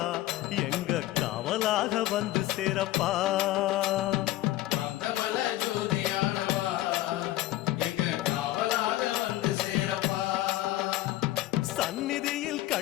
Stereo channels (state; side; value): quieter; right; 15.7 dB